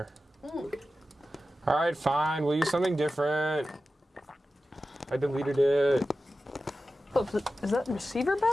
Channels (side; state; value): both; normal; correlation 0.93